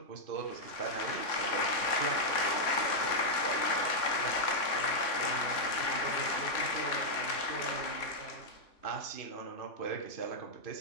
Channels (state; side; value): late; right; 3.5 ms